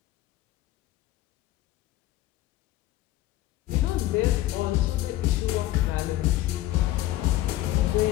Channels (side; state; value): right; quieter; 15.3 dB